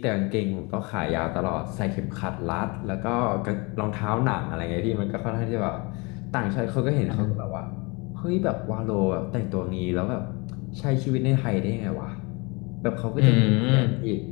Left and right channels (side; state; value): right; quieter; 28.3 dB